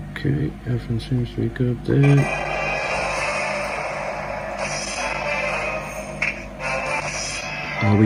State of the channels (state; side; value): identical; both; correlation 1.00